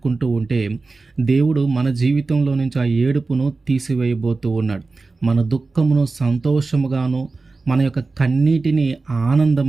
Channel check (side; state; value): left; quieter; 3.8 dB